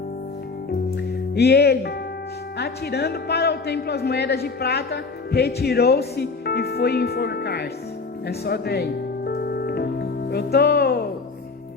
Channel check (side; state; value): right; quieter; 4.3 dB